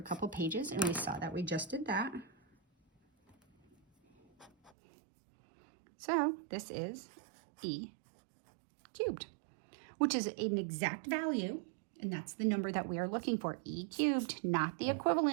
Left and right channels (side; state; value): left; drops out; at 4.7 s